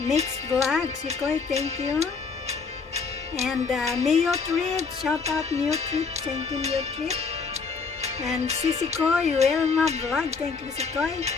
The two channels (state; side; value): quieter; right; 5.0 dB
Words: Vlog, Sikoy, thank you. And Mio Trip, shout out Mio Trip, thank you Mio Trip. And Sikoy, Wilma Vlog, thank you Sikoy.